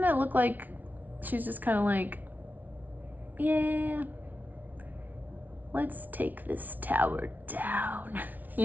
it look like she's just kind of like, yeah, let's take this tower down.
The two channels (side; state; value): left; late; 0.080 ms